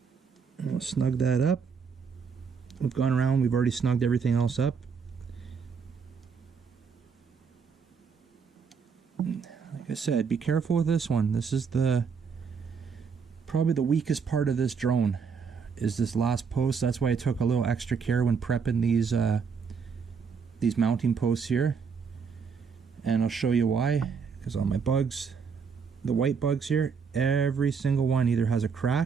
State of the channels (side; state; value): left; quieter; 6.0 dB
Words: And we'll snug that up. We've gone around, we've already snugged everything else up. Like I said, be careful with this one. This is probably the weakest part of this drone, is this last post. That's why I took a little extra care when prepping these mounting posts here. And I'll show you why, because on my bugs, the white bugs here, every single one either has a